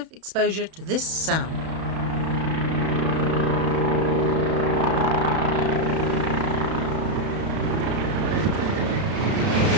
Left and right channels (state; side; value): late; left; 31 ms